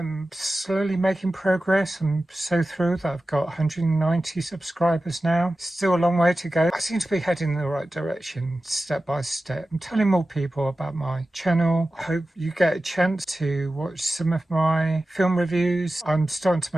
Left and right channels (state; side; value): normal; both; correlation 0.94